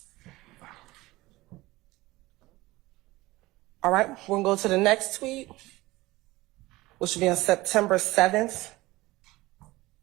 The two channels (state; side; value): quieter; left; 19.4 dB